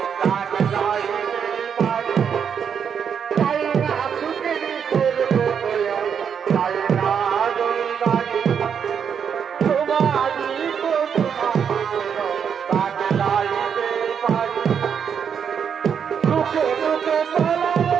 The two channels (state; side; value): quieter; left; 7.4 dB